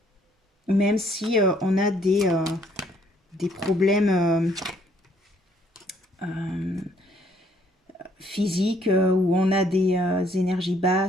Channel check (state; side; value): normal; both; correlation 0.65